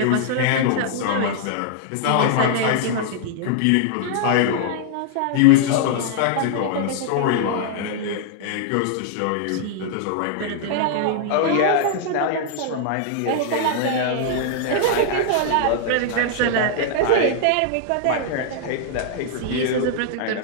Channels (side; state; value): both; different; correlation -0.01